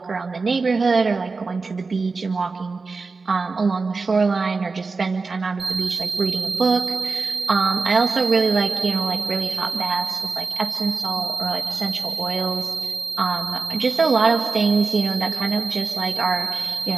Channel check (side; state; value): left; quieter; 4.2 dB